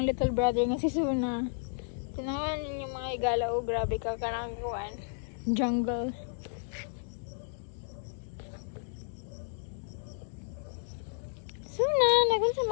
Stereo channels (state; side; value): silent; right; digital silence